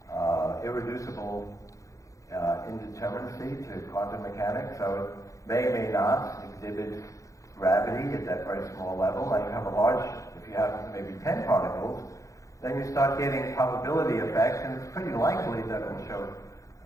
irreducible indeterminacy to quantum mechanics, so it may or may not exhibit gravity at that very small level. Now you have a large, if you have maybe 10 particles, then you start getting probability effects, and it's pretty likely that it will show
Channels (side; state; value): right; late; 0.15 ms